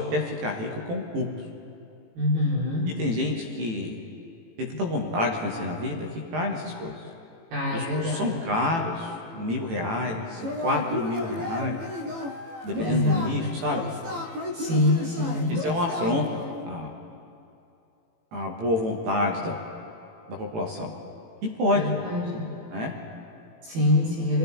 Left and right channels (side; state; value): left; late; 18 ms